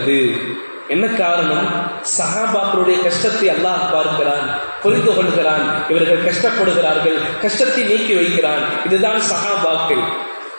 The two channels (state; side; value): inverted; both; correlation -1.00